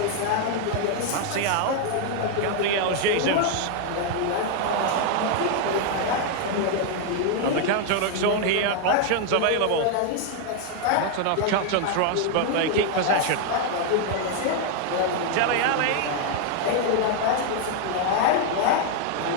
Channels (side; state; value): both; different; correlation 0.00